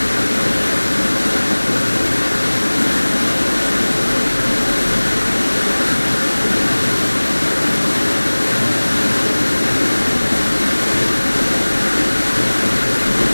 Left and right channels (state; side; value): inverted; both; correlation -1.00